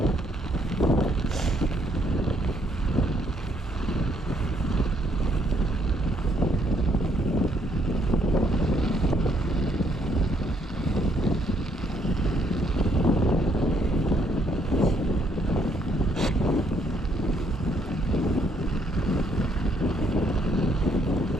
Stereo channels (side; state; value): both; normal; correlation 0.70